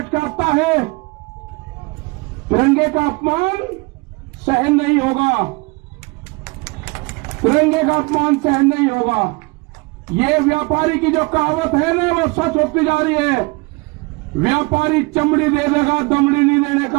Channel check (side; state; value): left; quieter; 27.1 dB